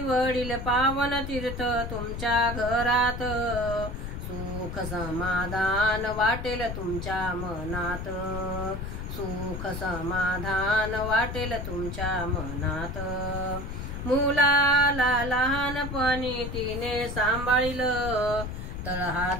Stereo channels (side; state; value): left; noise; rumble, 6 dB below the sound